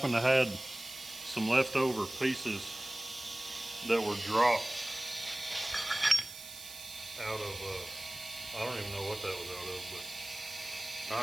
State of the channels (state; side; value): noise; right; hiss, 13 dB below the sound